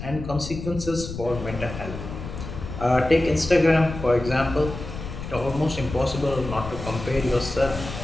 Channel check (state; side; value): noise; left; rumble, 9 dB below the sound